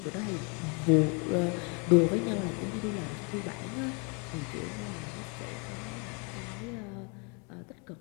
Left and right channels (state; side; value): quieter; right; 34.2 dB